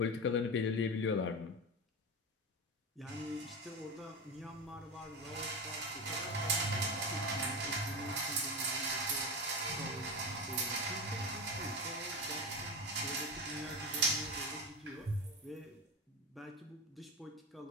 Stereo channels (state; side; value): normal; both; correlation 0.20